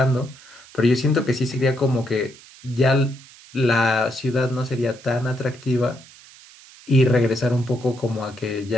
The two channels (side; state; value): right; noise; hiss, 22 dB below the sound